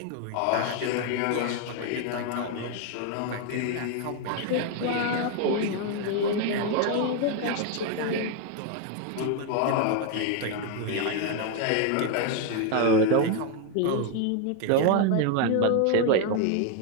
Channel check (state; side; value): different; both; correlation 0.01